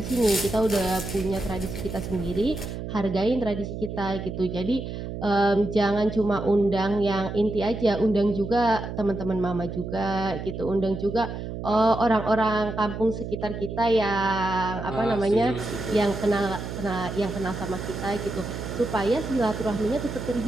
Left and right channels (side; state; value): right; noise; hum, 7 dB below the sound